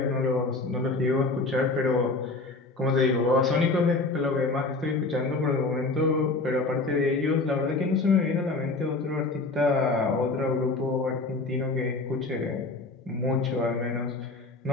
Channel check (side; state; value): right; quieter; 3.5 dB